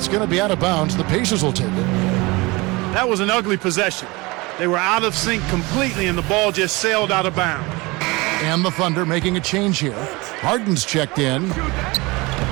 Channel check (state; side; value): quieter; left; 23.9 dB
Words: going to be out of bounds. The Pacers will take it. That was an ugly possession. They were out of sync completely, and the ball just sailed out of bounds. And the Thunder making a change here. Harden's checked in.